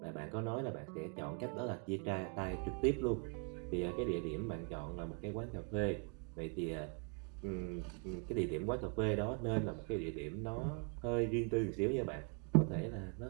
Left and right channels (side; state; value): left; quieter; 35.9 dB